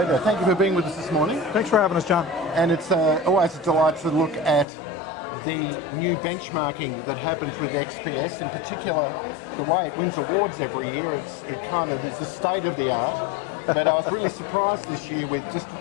Thank you for being with us this morning. Thanks for having us, John. And it's always a delight to look at the new benchmarking that happens with XPS, in particular the way it wins awards every year. It kind of is the state of the art. But I was really surprised this year with just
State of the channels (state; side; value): drops out; right; at 4.7 s